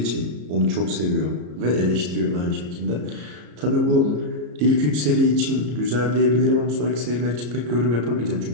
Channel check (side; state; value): left; late; 34 ms